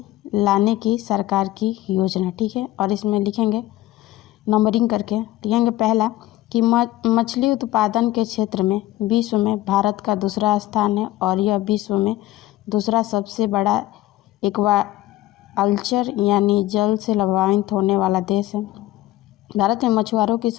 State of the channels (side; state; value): right; quieter; 15.8 dB